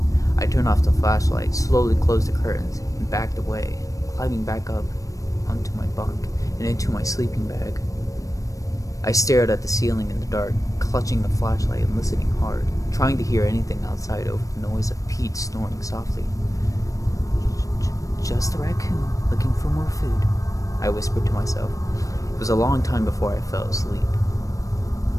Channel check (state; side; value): late; right; 0.16 ms